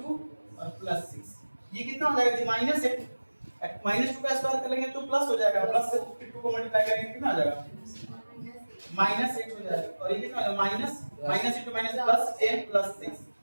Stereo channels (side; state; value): both; inverted; correlation -1.00